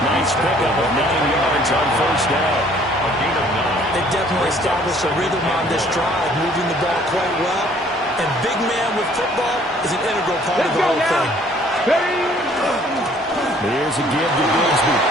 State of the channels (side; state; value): both; normal; correlation 0.58